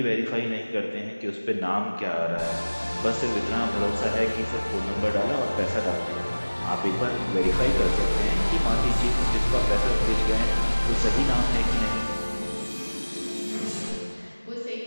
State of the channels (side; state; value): both; inverted; correlation -1.00